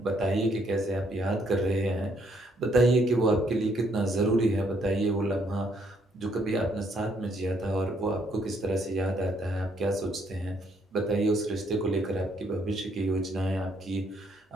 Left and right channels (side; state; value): both; normal; correlation 0.70